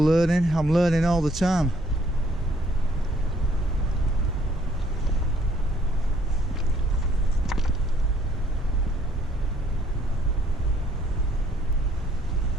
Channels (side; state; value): both; normal; correlation 0.65